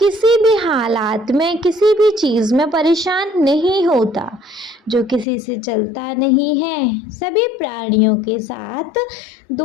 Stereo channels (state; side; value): drops out; right; at 5.2 s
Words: भी हालात में, किसी भी चीज में परेशान नहीं होता, जो किसी से चलता नहीं है, सभी प्राणियों के साथ